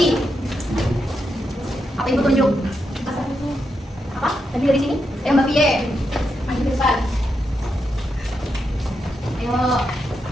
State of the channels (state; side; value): normal; both; correlation 0.84